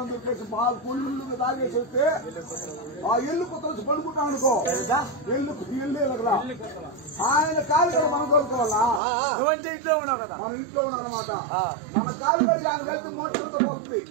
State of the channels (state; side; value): drops out; left; at 9.0 s